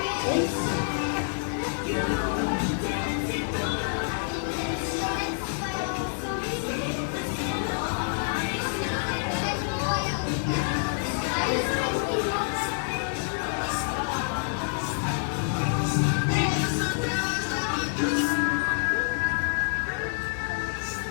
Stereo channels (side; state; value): right; silent; digital silence